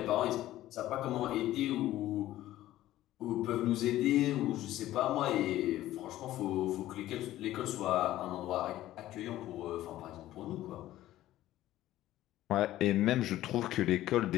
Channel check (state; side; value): quieter; right; 14.5 dB